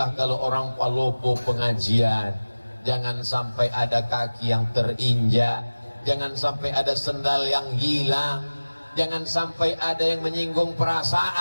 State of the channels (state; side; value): inverted; both; correlation -1.00